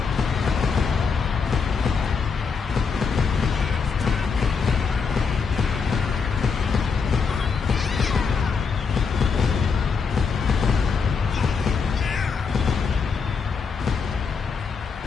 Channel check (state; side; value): quieter; right; 5.5 dB